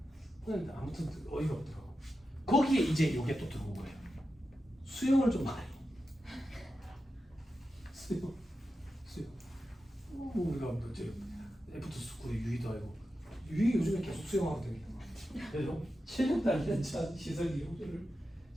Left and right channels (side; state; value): both; normal; correlation 0.90